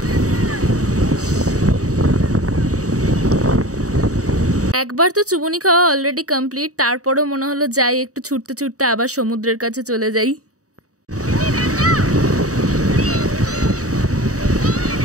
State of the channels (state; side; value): late; left; 0.66 ms